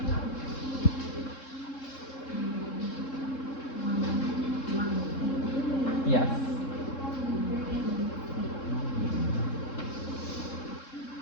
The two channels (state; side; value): late; right; 3.7 ms